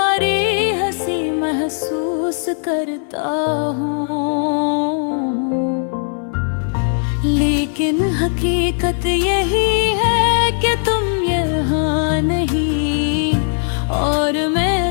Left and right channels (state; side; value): silent; right; 61 dB below the other